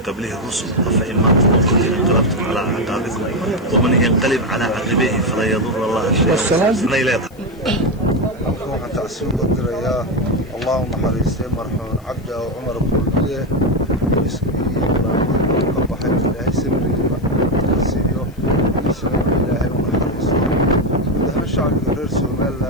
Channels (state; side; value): noise; left; hiss, 29 dB below the sound